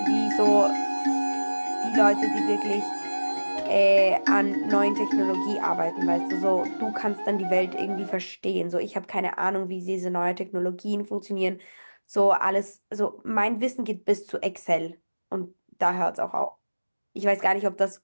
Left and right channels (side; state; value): both; inverted; correlation -1.00